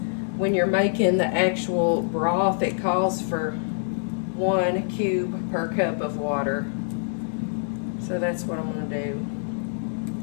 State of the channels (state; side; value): silent; right; digital silence